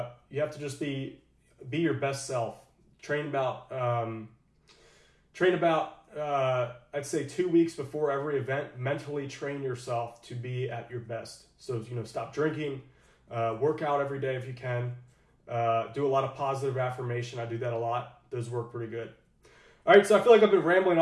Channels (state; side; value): identical; both; correlation 1.00